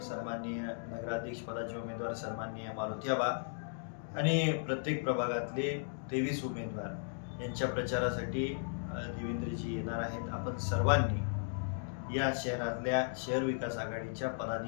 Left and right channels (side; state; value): right; silent; digital silence